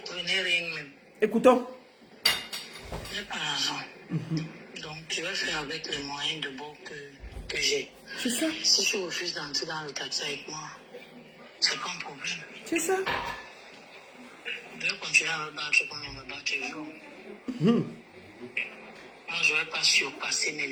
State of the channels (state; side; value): identical; both; correlation 1.00